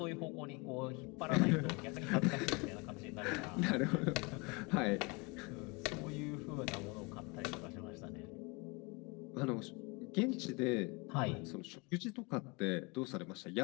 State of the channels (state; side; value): quieter; right; 28.6 dB